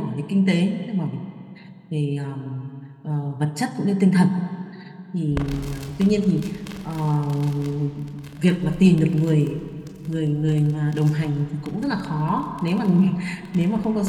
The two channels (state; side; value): identical; both; correlation 1.00